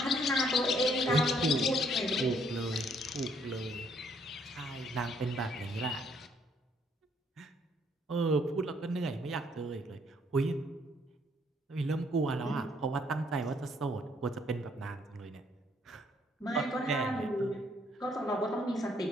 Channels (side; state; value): both; normal; correlation 0.67